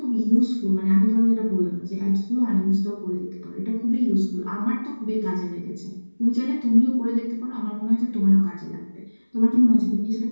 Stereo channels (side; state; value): both; inverted; correlation -1.00